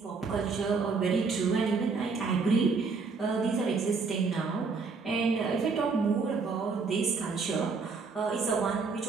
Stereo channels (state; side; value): quieter; left; 4.7 dB